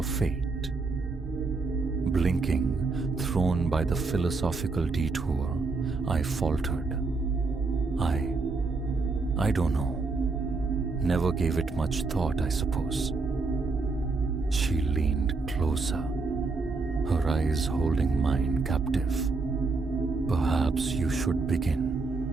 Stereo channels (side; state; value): left; quieter; 4.0 dB